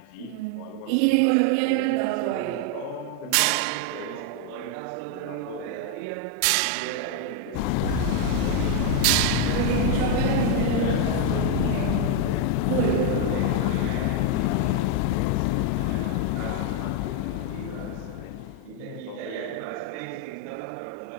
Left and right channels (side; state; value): both; different; correlation 0.01